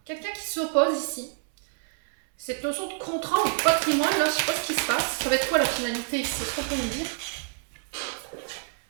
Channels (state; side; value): silent; left; 59 dB below the other